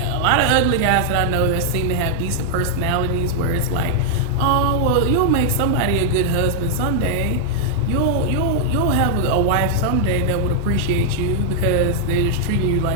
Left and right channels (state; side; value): normal; both; correlation -0.02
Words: a lot of ugly guys that I know that seem to have decent personalities, where it's like, oh well, you'll make somebody a good husband someday. You'll have a wife someday that would appreciate you, because they're just treating you